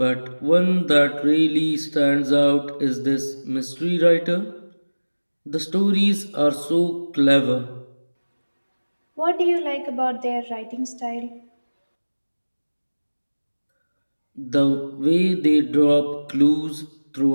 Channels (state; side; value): inverted; both; correlation -1.00